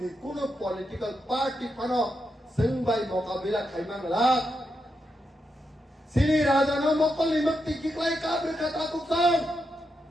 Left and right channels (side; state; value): both; normal; correlation 0.84